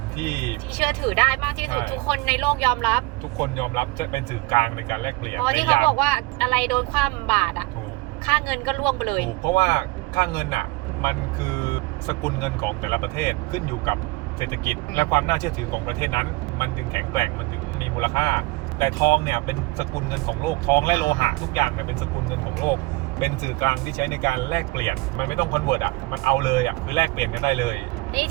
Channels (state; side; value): quieter; left; 23.6 dB